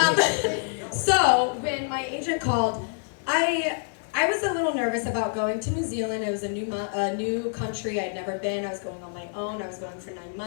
So when my agent called, I was a little nervous about going to New Zealand. It was a new country. I'd never been. I was going on my own. I was going for 9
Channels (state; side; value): silent; right; 60 dB below the other